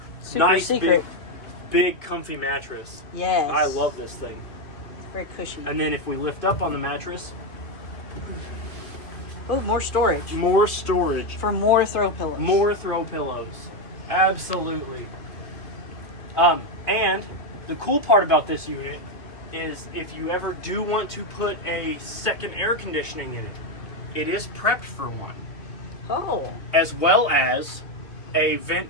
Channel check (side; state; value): right; late; 2.8 ms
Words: Super nice, secret. Big, comfy mattress. Yes. I love this thing. Very cushy. And then if we lift up on the mattress, oh, more storage. More storage. For more throw pillows. More throw pillows. Absolutely. And the cool part about this unit is if you ever do want to put a second air conditioning in it, it is prepped for one. Oh. As well as a